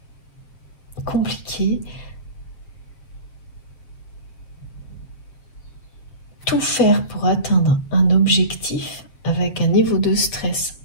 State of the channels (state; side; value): late; right; 7.5 ms